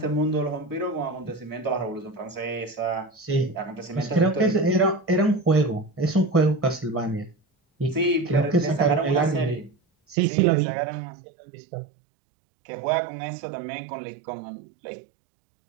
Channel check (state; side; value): drops out; left; at 10.2 s